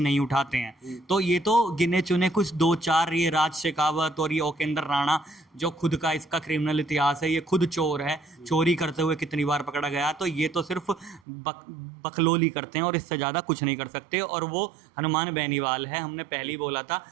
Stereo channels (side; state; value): left; drops out; at 11.2 s